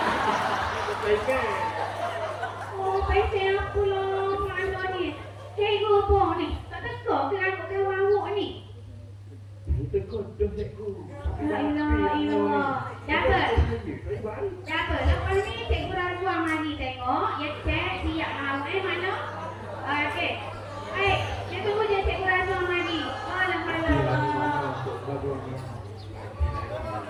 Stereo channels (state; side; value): identical; both; correlation 1.00